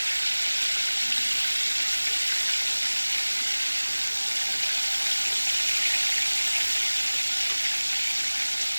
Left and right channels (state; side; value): inverted; both; correlation -1.00